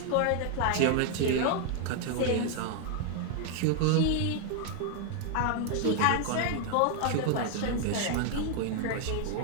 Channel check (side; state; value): both; different; correlation 0.00